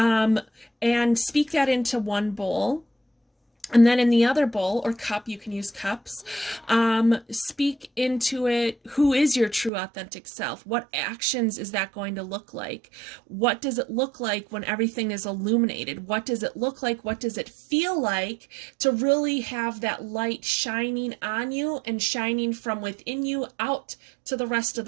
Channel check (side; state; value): left; drops out; at 9.7 s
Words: speak that into one bowl. And then in the other bowl or cup, you can use cups, speak into it, who is your true authentic self? What actions is that going to look like? What does it look like when everything is illuminated? What does it look like? What does it feel like to really have that light shining on you and shining from within you out to the rest of